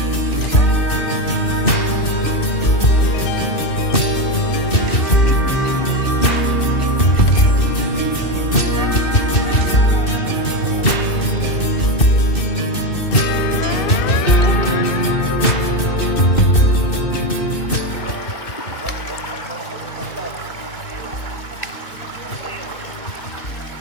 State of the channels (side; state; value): right; late; 2.6 ms